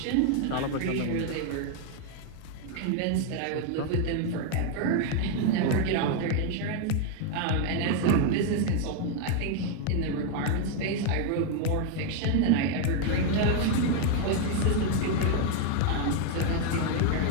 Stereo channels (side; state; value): both; different; correlation 0.01